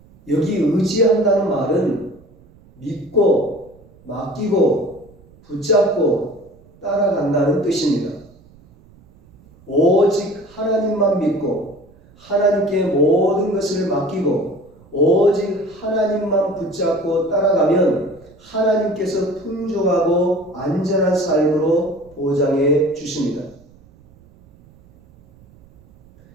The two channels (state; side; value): noise; right; rumble, 27 dB below the sound